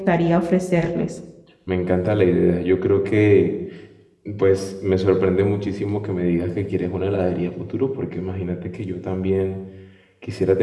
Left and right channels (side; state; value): both; identical; correlation 1.00